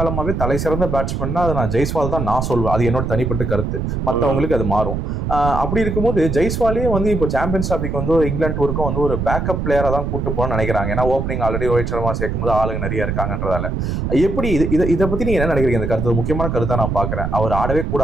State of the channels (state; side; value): noise; right; rumble, 2 dB below the sound